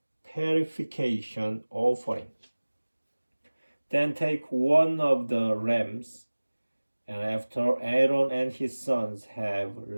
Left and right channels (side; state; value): both; inverted; correlation -1.00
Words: purification offering. Then take one of the rams, and after Aaron and his sons have